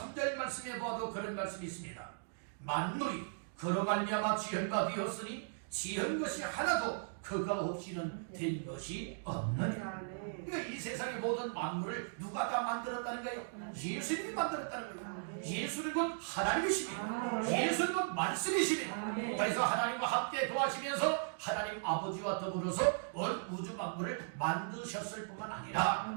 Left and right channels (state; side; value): silent; left; digital silence